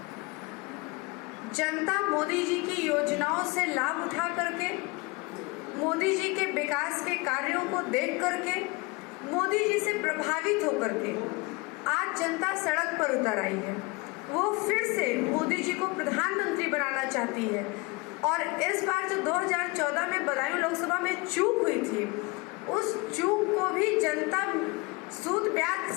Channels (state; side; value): quieter; right; 25.7 dB